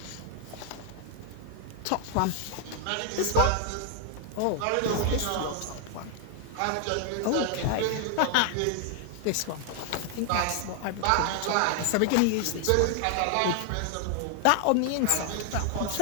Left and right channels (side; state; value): both; different; correlation 0.00